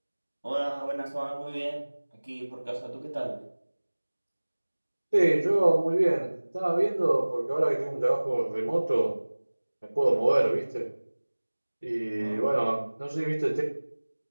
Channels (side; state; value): both; inverted; correlation -1.00